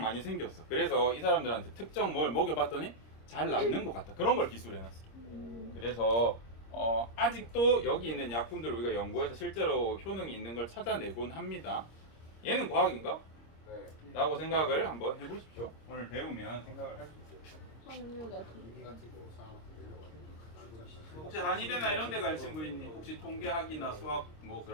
생겼어. 그래서 이 사람들한테 특정 뭘 먹여봤더니 잘 낫는 것 같다. 그런 걸 기술해놨어. 그래서 아직도 여기 있는 약품들을 우리가 연구해서 실제로 효능이 있는 걸 찾아내곤 합니다. 얘는 과학인가? 네. 라고 생각을 한번 해보십시오. 오늘 배우면 생각을 할 수 있어요. 확률 같은 인 같은 거 사람한테 내려가지고. 혹시 한의대나 이런 데 갈 친구 있니? 혹시 통계학이나 수학 뭐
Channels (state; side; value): late; right; 26 ms